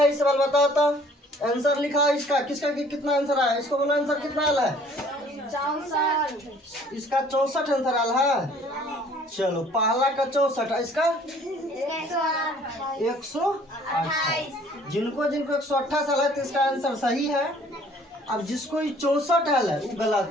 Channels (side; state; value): both; normal; correlation 0.56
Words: इस सवाल बताओ तो। आंसर लिखा इसका, किसका कितना आंसर आया, इसको बोलो आंसर कितना आया है? 64। इसका 64 आंसर आया है। चलो पहला का 64, इसका 128। जिनको 128 आया है तो इसका आंसर सही है। अब जिसको 64 आया है वो गलत